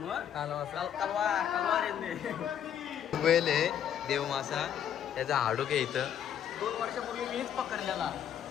कलवार वेल आहे देव मासा त्याचा हाडूक आहे इथं 2 वर्षापूर्वी मीच पकडलेला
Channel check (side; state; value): right; quieter; 9.5 dB